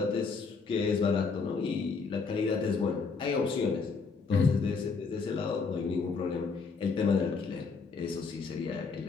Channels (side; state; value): right; quieter; 4.8 dB